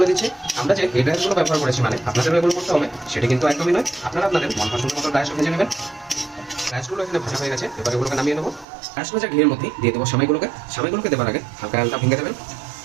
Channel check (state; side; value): drops out; left; at 8.7 s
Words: দিচ্ছি, আমরা যে এই ড্রাই রোস্টগুলো ব্যবহার করেছি মানে আপনাদের এগুলো করতে হবে সেটি কিন্তু একদমই নয়। আপনারা আপনাদের মন পছন্দ মতো ড্রাই রোস্ট ভেজে নেবেন। ড্রাই রোস্টগুলো এখানে ভাজা হয়ে গেছে, এবার এগুলোকে নামিয়ে নেব। ড্রাই রোস্ট ভাজা ঘিয়ের মধ্যে দিয়ে দেবো সেমাইগুলোকে। সেমাইগুলোকে দেওয়ার আগে হালকা হালকা ভেঙে দেবেন।